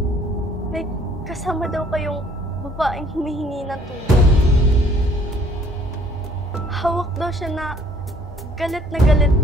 May kasama daw kayong babaeng humihingi ng tulong. Hawak daw siya na galit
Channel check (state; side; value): normal; both; correlation 0.60